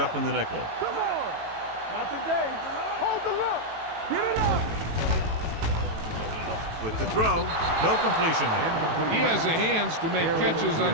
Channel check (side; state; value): left; late; 18 ms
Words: in the nickel. Come on. Not today. Hold the look. Get it up. With the throw, no completion there. He has the hands to make catches on